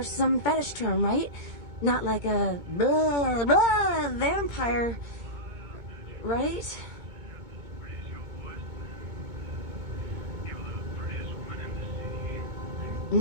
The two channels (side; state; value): left; late; 2.2 ms